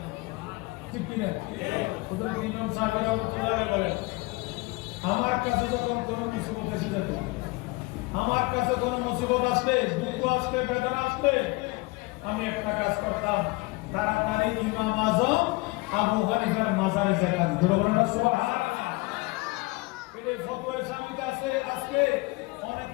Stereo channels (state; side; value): quieter; right; 24.2 dB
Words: ঠিক কিনা? হুজুর ইমাম সাহেব রহমাতুল্লাহ আলাইহি বলেন, আমার কাছে যখন কোনো মুসিবত এসে যেত, আমার কাছে কোনো মুসিবত আসলে, দুঃখ আসলে, বেদনা আসলে, আমি একটা কাজ করতাম, তাড়াতাড়ি ইমাম আজম আবু হানিফার মাজারে যেতাম। জোরে বলেন না সুবহানাল্লাহ। এই ফতোয়া সামিতে আছে, আজকে